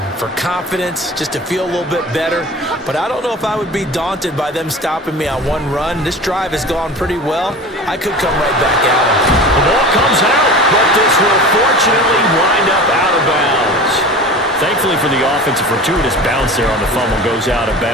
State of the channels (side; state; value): both; normal; correlation 0.36